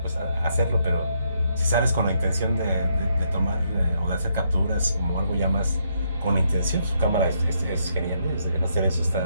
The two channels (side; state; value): both; inverted; correlation -0.75